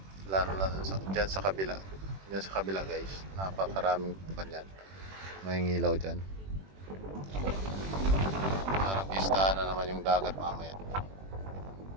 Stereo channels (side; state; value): left; late; 21 ms